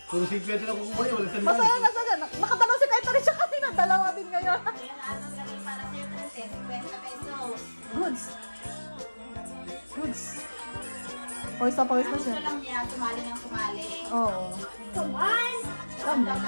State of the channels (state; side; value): inverted; both; correlation -1.00